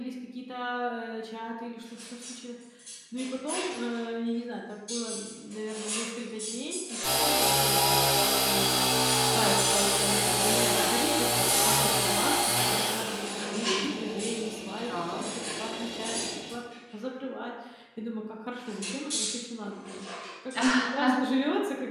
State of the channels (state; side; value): identical; both; correlation 1.00